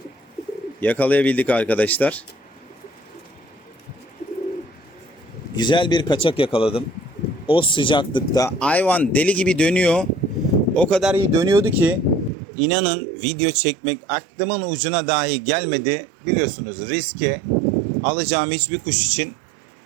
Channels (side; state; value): left; drops out; at 12.3 s